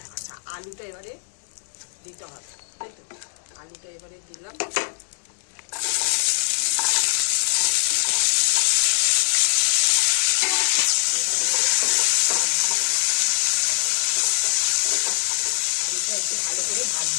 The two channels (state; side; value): silent; right; digital silence